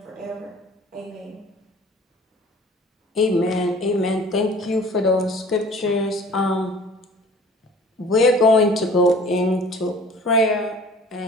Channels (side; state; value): both; normal; correlation 0.47